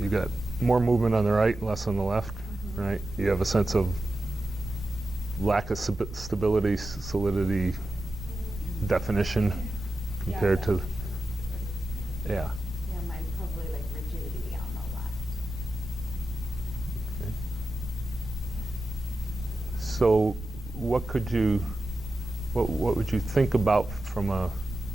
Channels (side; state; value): right; noise; rumble, 13 dB below the sound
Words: got more movement on the right, less on the left, right? You have a sense of lack of stability, solidity, definition compared to, yeah. Yeah, mine's probably like rigidity on the left. Okay. So what would you think about from a